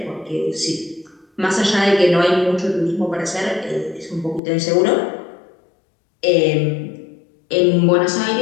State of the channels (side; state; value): right; drops out; at 4.4 s